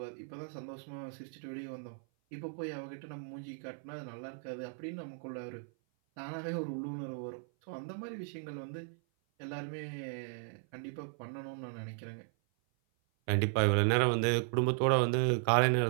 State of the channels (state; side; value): silent; left; 54 dB below the other